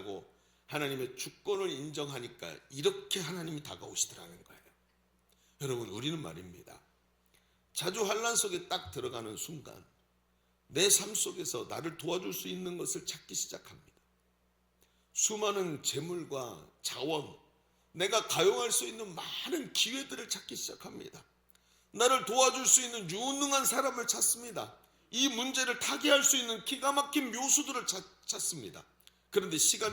하나님의 주권을 인정하니까 이렇게 하나님이 다가오시더라는 거예요. 여러분, 우리는 말입니다, 자주 환난 속에 딱 들어가는 순간 내 삶 속에서 나를 도와줄 수 있는 것을 찾기 시작합니다. 수많은 재물과 자원, 내가 가용할 수 있는 많은 기회들을 찾기 시작합니다. 나를 도와줄 수 있는 유능한 사람을 찾습니다. 이 문제를 타개할 수 있는 기가 막힌 묘수들을 찾습니다. 그런데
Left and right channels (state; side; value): identical; both; correlation 1.00